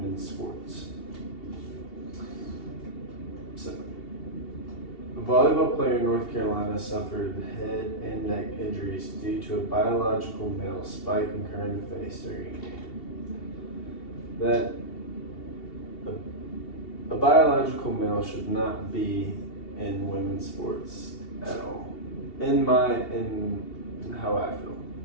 sports. So, a volleyball player in North Carolina suffered head and neck injuries due to a biological male spiking her in the face during a game. That a biological male should not be in women's sports at all. In how I feel,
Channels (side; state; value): right; late; 2.7 ms